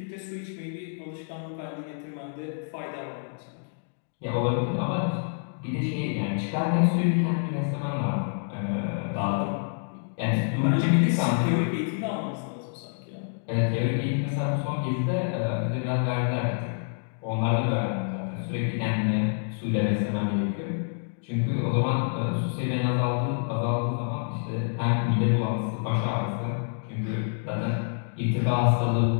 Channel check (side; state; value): right; silent; digital silence